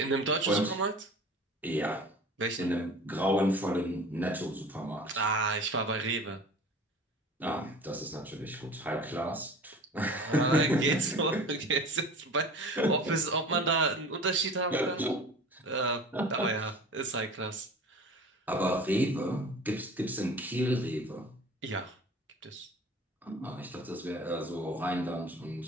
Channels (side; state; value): both; normal; correlation 0.40